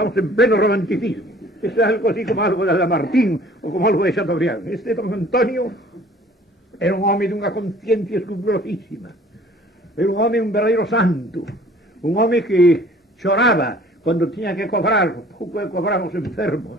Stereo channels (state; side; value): normal; both; correlation 0.52